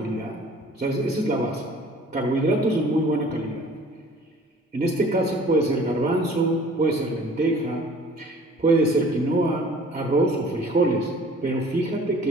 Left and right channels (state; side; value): normal; both; correlation 0.51